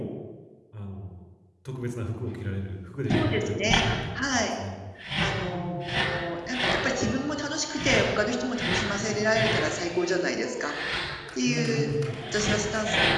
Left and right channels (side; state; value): both; identical; correlation 1.00